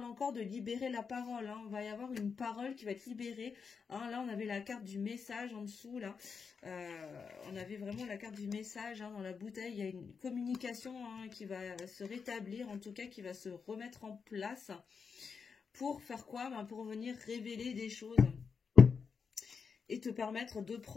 encore de libérer la parole. Hein. On va y avoir une parole qui va être libérée. Hein. Là, on avait la carte du message en dessous, là. On avait vraiment la carte du message hein, dans la bouteille. Il y a une communication hein, qui va se rétablir, en tout cas, qui va se remettre en place. Pour faire quoi? Ben, pour venir révéler des choses. Et te permettre de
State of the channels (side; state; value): right; quieter; 5.7 dB